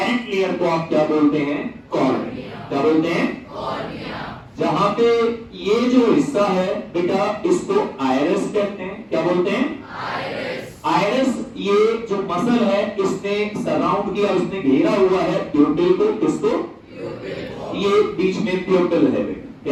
लेयर को आप क्या बोलते हैं? कॉर्निया। क्या बोलते हैं? कॉर्निया। जहां पे ये जो हिस्सा है बेटा इसको आइरिस कहते हैं। क्या बोलते हैं? आइरिस। आइरिस ये जो मसल है इसने सराउंड किया, उसने घेरा हुआ है प्यूपिल को। किसको? प्यूपिल। ये बीच में प्यूपिल है बेटा।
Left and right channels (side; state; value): both; identical; correlation 1.00